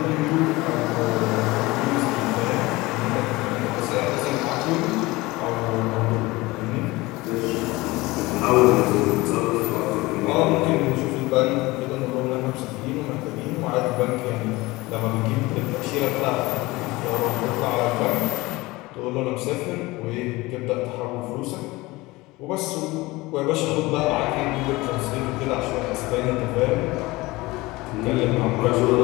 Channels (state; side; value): quieter; right; 21.2 dB